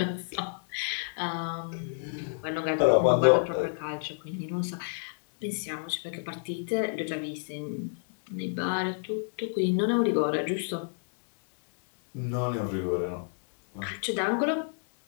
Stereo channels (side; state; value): right; silent; digital silence